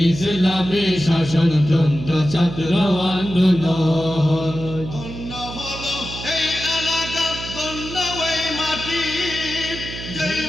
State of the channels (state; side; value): noise; right; hum, 10 dB below the sound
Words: শাসনতন্ত্র ছাত্র আন্দোলন। ধন্য হলো এই এলাকা, ধন্য এই মাটি, যেই